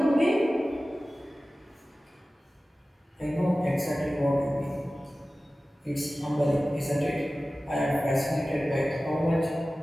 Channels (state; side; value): normal; both; correlation 0.96